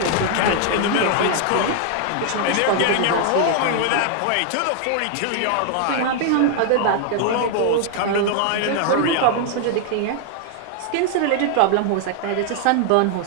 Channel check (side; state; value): both; different; correlation 0.00